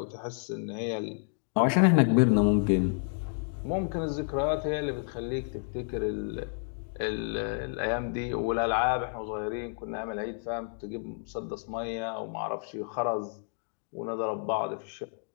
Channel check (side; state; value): right; silent; 58 dB below the other